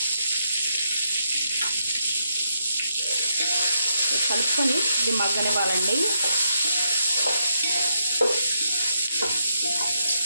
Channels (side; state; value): both; inverted; correlation -0.79